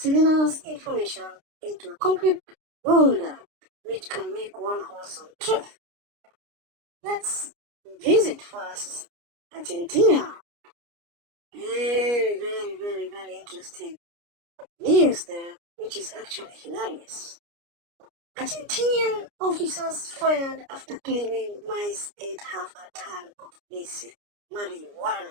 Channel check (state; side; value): late; left; 29 ms